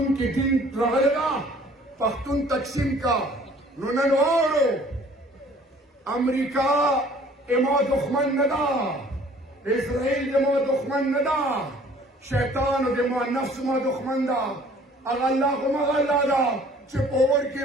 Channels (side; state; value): both; normal; correlation 0.54